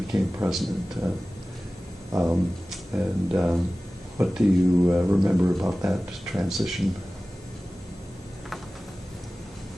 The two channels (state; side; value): normal; both; correlation 0.97